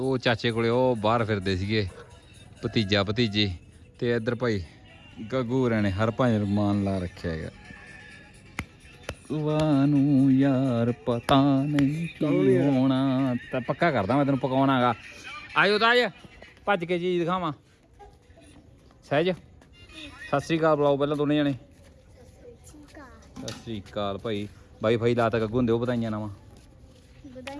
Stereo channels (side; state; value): both; identical; correlation 1.00